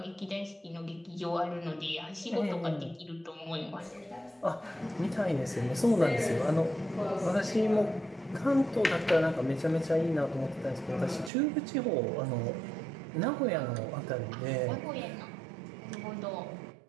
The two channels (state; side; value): drops out; left; at 11.3 s